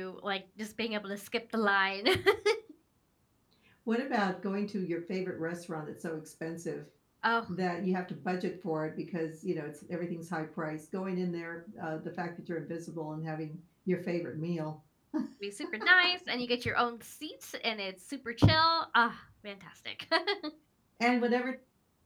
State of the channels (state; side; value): identical; both; correlation 1.00